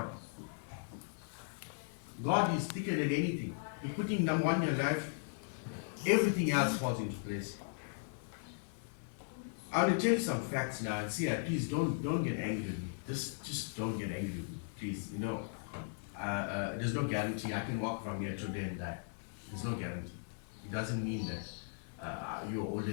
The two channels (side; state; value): right; silent; 53 dB below the other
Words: God is thicker than anything. You put him number one in your life, everything else falls into place. I want to tell you some facts now and see, please don't get angry with me. Just don't get angry with me, please. You know, there's no guarantee. I can walk from here today and die. There's no guarantee. It doesn't mean that you're older